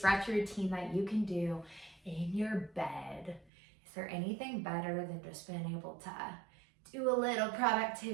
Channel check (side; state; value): left; drops out; at 3.5 s